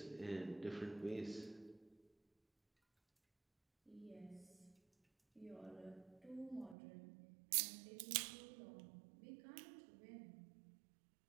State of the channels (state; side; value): drops out; left; at 6.8 s